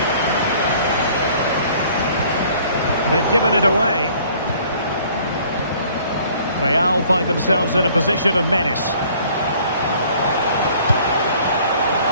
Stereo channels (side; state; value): both; inverted; correlation -0.56